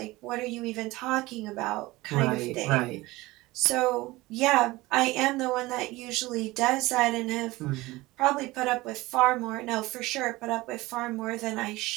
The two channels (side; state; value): left; quieter; 20.0 dB